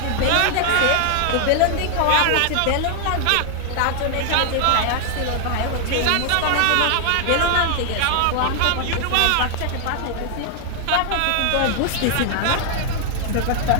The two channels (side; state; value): both; different; correlation 0.00